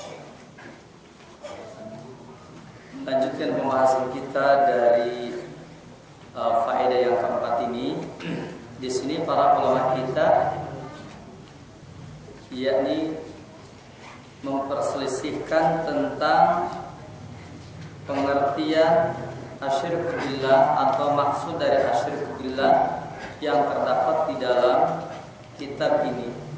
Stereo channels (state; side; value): identical; both; correlation 1.00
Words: Lanjutkan pembahasan kita dari faedah yang keempat ini. Di sini para ulama kita yakni memperselisihkan tentang pengertian asyirku billah atau maksud dari asyirku billah yang terdapat di dalam kitab ini